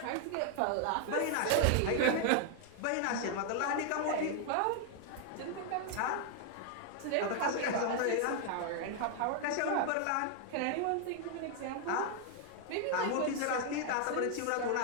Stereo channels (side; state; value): both; different; correlation 0.00